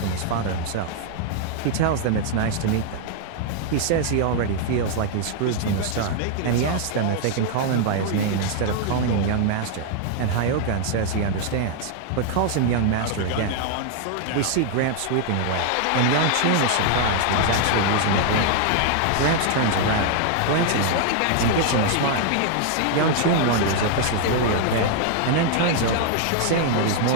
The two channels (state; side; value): different; both; correlation 0.00